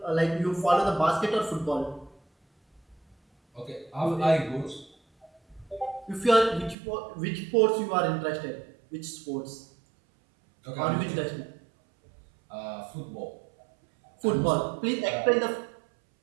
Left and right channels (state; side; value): drops out; left; at 6.8 s